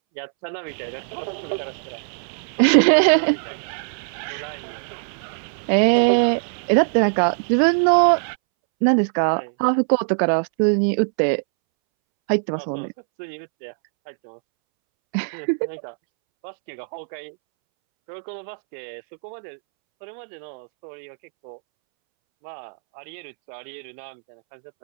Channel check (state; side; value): silent; left; 64 dB below the other